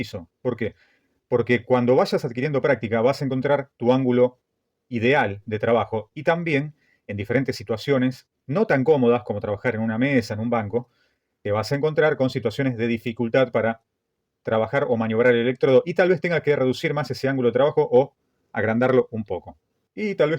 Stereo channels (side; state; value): both; identical; correlation 1.00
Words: ¿Por qué? Porque cuando vayas adquiriendo práctica vas a encontrar tu ángulo ideal de trabajo y también en diferentes situaciones no tan cómodas como trabajar en una mesa, en un banco, te vas a encontrar con situaciones de dificultad para trabajar o maniobrar el electrodo y tal vez tenga que reducir más ese ángulo de trabajo o agrandarlo un poco. Y tal vez